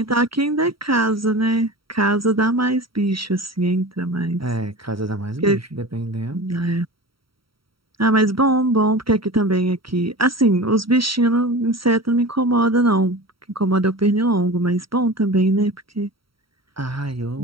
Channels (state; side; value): late; left; 0.75 ms